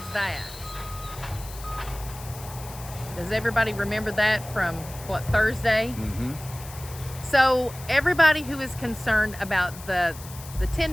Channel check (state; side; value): noise; left; hiss, 16 dB below the sound